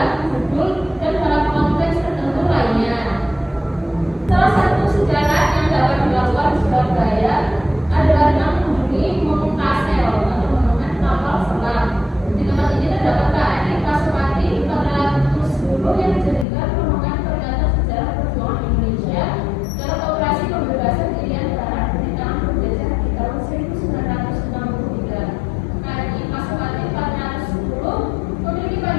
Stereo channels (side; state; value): right; drops out; at 16.4 s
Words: judul, dan dalam konteks tertentu lainnya. Salah satu sejarah yang dapat dilakukan di Surabaya adalah dengan mengunjungi Monumen Kastel atau Monumen Kapal Selam. Di tempat ini terdapat KRI Pasopati 410 yang dijadikan monumen peringatan sejarah perjuangan Indonesia dalam operasi pembebasan Irian Barat dari tangan penjajah di tahun 1963. KRI Pasopati 410 memiliki